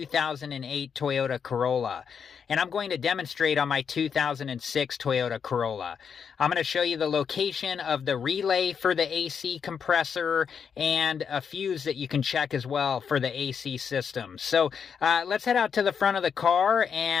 Toyota Corolla. And I'm going to demonstrate on my 2006 Toyota Corolla. I'm going to show you the location of the relay for the AC compressor and a fuse that you can check as well for the AC system. So let's head out to the front of the car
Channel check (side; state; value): right; quieter; 6.9 dB